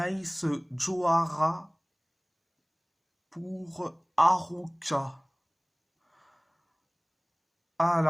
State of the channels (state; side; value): identical; both; correlation 1.00